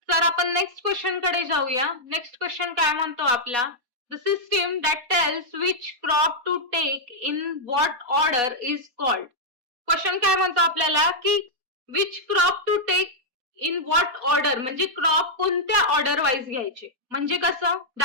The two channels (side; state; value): left; late; 4.1 ms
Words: तर आपण नेक्स्ट क्वेश्चन कडे जाऊया. नेक्स्ट क्वेश्चन काय म्हणतो आपला, the system that tells which crop to take in what order is called. Question काय म्हणतो आपल्याला की which crop to take in what order, म्हणजे क्रॉप कोणत्या ऑर्डर वाईज घ्यायचे. म्हणजे कसं,